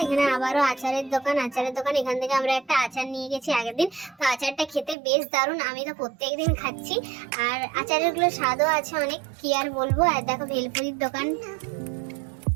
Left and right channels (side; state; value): left; drops out; at 5.0 s